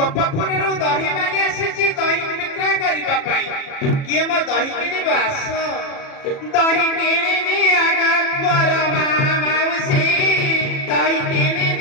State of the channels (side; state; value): right; late; 37 ms